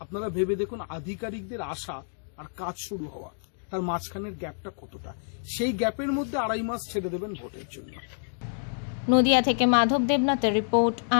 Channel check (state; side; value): silent; right; digital silence